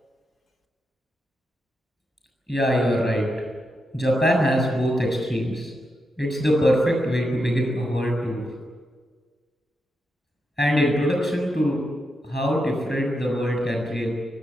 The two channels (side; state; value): both; normal; correlation 0.85